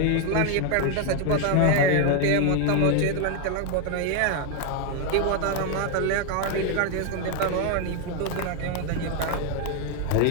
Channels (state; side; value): different; both; correlation 0.01